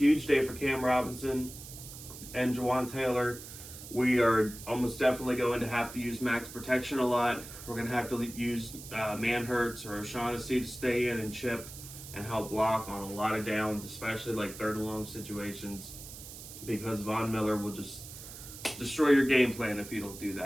day for Cam Robinson and Jawan Taylor. We are almost definitely going to have to use max protection a lot. We're going to have to use Manhurts or O'Shaughnessy to stay in and chip and help block on a lot of downs, especially like 3rd and long situations, because Von Miller will just destroy your game plan if you don't do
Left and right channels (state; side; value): noise; right; hiss, 13 dB below the sound